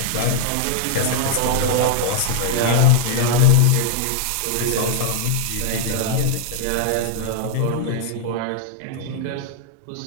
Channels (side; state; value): both; different; correlation -0.01